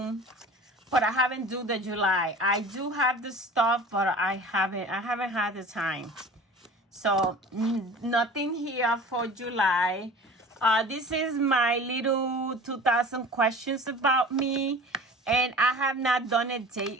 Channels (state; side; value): normal; both; correlation 0.41